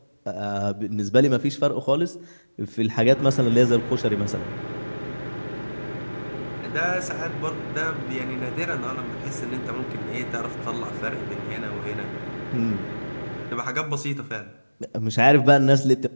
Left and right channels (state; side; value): inverted; both; correlation -1.00